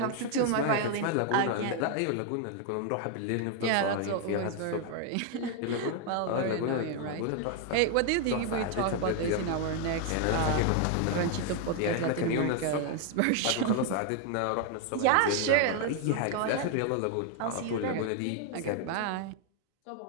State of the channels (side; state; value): both; different; correlation 0.01